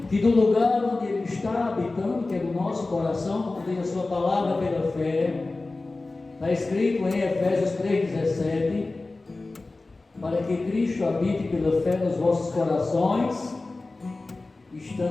que do lugar onde Ele está habitando, que é no nosso coração, como tem a sua palavra pela fé, está escrito em Efésios 3,17, para que Cristo habite pela fé nos vossos corações,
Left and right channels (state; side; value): quieter; right; 3.3 dB